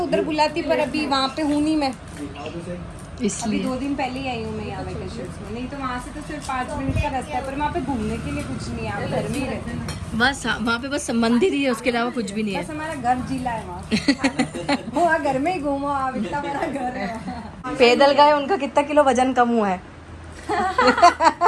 बुलाती, पर अभी वहाँ पे हूँ नहीं मैं। अभी इसलिए 2 दिन पहले ही आई हूँ मैं यहाँ वेकेशन में। नहीं तो वहाँ से तो सिर्फ 5 मिनट का रास्ता है, पर वहाँ पे घूमने के लिए कुछ नहीं है। आप घर में ही रहते हैं। बस वहाँ पे बस मंदिर ही है, उसके अलावा कुछ भी नहीं है। बस हमारा घर जिला है वहाँ। वहाँ घर में ही घूमो आप, इतना बड़ा घर है वहाँ। पैदल गए, उनका कितना किलो वजन कम हुआ है।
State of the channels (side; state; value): both; identical; correlation 1.00